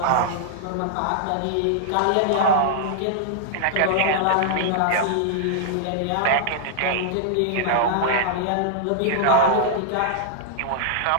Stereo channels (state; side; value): different; both; correlation -0.01